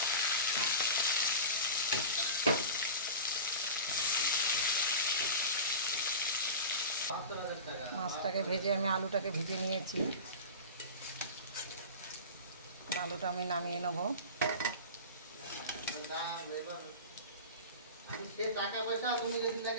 মাছটাকে ভেজে আমি আলুটাকে ভেজে নিয়েছি। আলুটা আমি নামিয়ে নেব। টাকা পয়সা তুমি যদি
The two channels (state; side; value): inverted; both; correlation -0.31